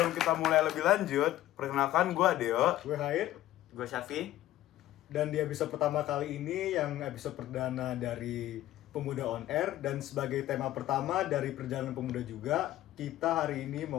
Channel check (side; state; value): right; quieter; 14.5 dB